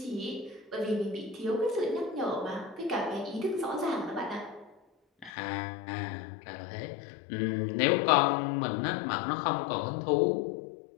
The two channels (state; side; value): drops out; right; at 5.3 s